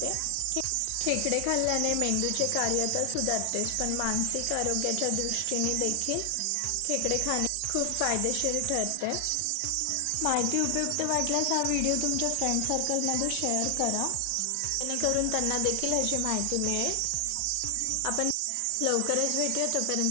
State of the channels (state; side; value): different; both; correlation 0.00